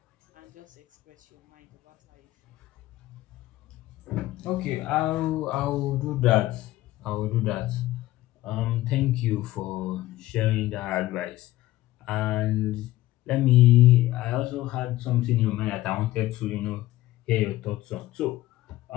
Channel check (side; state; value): right; quieter; 16.3 dB